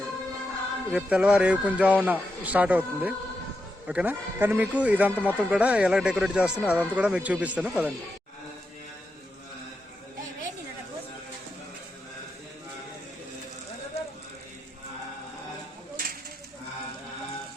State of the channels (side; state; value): both; normal; correlation 0.85